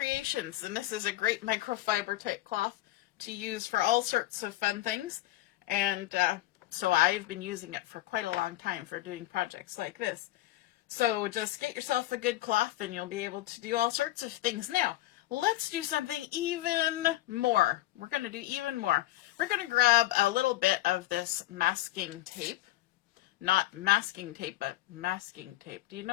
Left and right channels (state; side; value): quieter; right; 16.4 dB